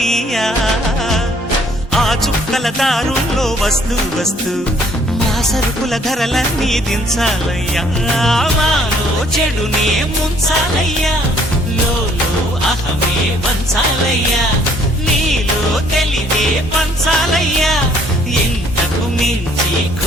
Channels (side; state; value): both; normal; correlation 0.62